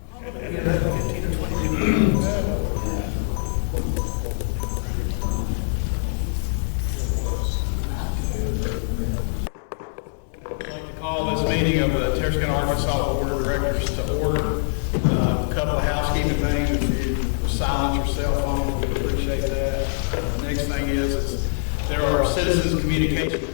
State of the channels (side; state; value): right; silent; digital silence